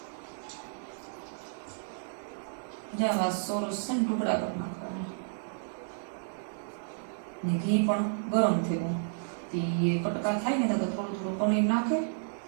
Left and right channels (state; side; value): silent; left; digital silence